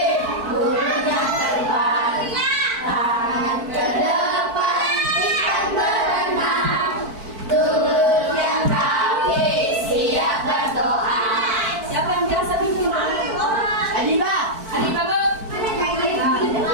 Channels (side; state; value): left; late; 4.5 ms